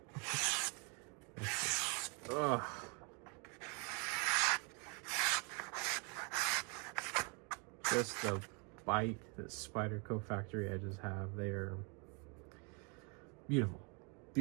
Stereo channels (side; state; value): left; quieter; 34.6 dB